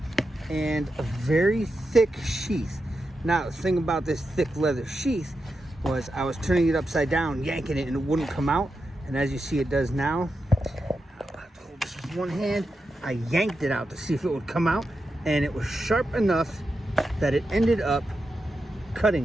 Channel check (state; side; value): normal; both; correlation 0.88